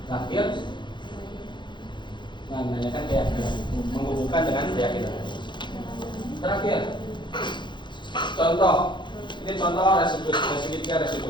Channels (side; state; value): right; late; 0.23 ms